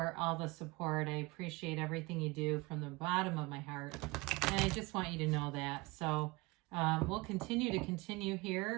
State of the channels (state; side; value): quieter; left; 24.1 dB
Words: all the support. I appreciate everything you do from the bottom of my heart, and I just want you to know that. So we'll continue